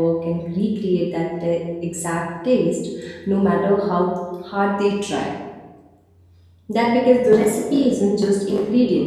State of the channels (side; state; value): both; identical; correlation 1.00